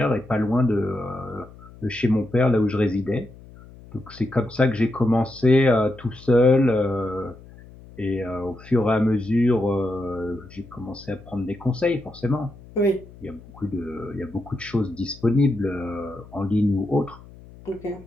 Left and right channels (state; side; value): noise; left; hum, 20 dB below the sound